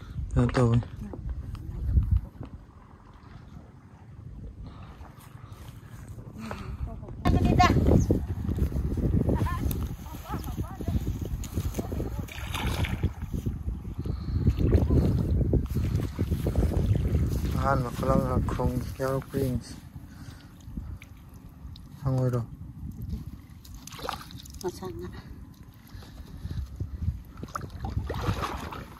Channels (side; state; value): both; identical; correlation 1.00